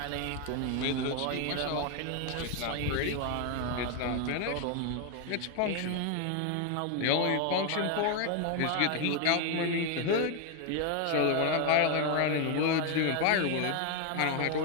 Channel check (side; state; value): both; different; correlation 0.01